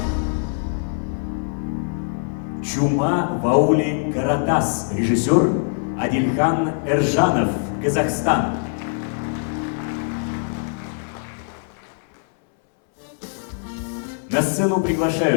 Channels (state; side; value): silent; right; 64 dB below the other